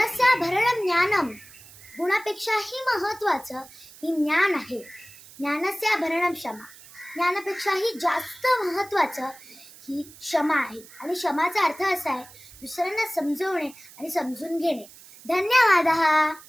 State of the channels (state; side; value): noise; right; hiss, 20 dB below the sound